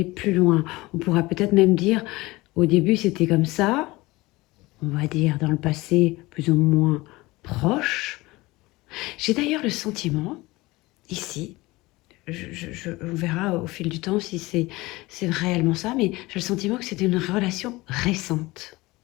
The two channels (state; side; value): quieter; right; 21.0 dB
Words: plus loin. On pourra peut-être même dire, au début c'était comme ça, on va dire dans le passé plus ou moins proche. J'ai d'ailleurs le sentiment, ici, on verra au fil du temps si c'est réellement ça, mais j'ai le sentiment que c'était une relation récente